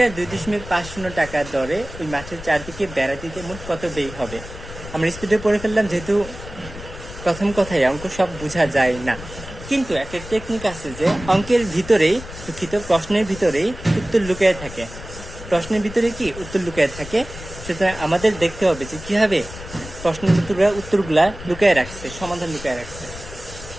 2.50 টাকা দরে ওই মাঠের চারদিকে বেড়া দিতে মোট কত ব্যয় হবে? আমরা স্পিডে পড়ে ফেললাম, যেহেতু প্রথম কথায় অঙ্ক সব বোঝা যায় না, কিন্তু একটা টেকনিক আছে যে অঙ্কের ভিতরেই, দুঃখিত, প্রশ্নের ভিতরেই উত্তর লুকিয়ে থাকে। প্রশ্নের ভিতরে কি উত্তর লুকিয়ে থাকে, সুতরাং আমাদের দেখতে হবে যে কিভাবে প্রশ্নের উত্তরগুলা লুকিয়ে রাখছে, সমাধান লুকিয়ে রাখছে।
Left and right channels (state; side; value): noise; left; rumble, 13 dB below the sound